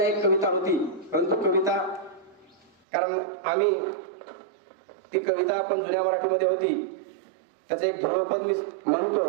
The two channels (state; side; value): drops out; left; at 2.7 s